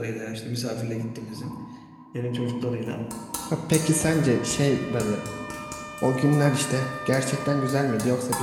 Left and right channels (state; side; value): identical; both; correlation 1.00